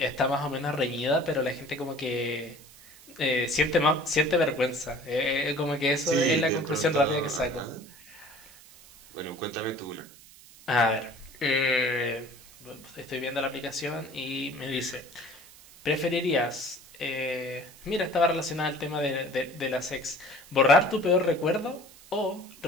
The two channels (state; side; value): noise; right; hiss, 22 dB below the sound